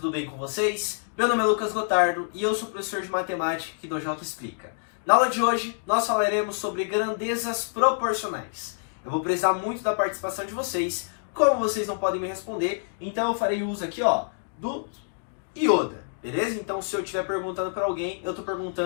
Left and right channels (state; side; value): silent; right; digital silence